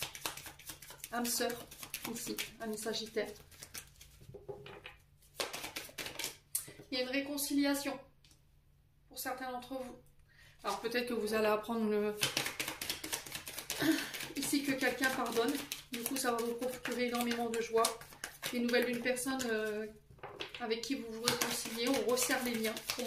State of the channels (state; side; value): identical; both; correlation 1.00